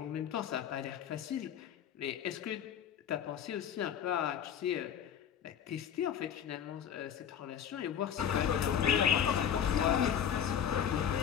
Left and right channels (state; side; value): quieter; right; 8.8 dB